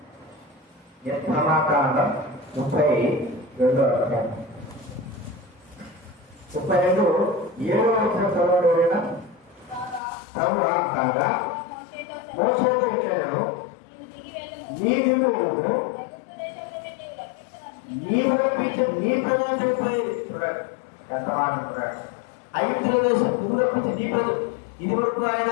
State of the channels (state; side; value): drops out; right; at 10.0 s